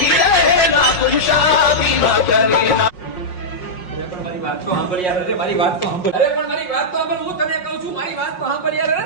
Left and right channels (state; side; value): late; right; 5.6 ms